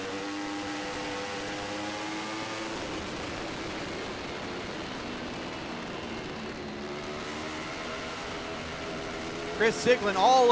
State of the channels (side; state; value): both; identical; correlation 1.00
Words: Chris Siglin all